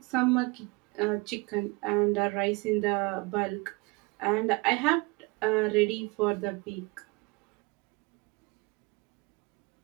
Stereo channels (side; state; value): left; quieter; 26.5 dB